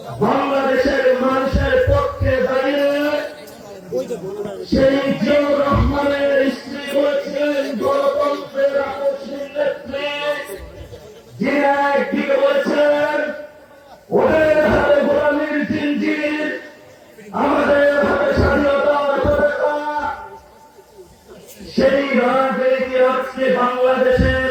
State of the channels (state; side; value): identical; both; correlation 1.00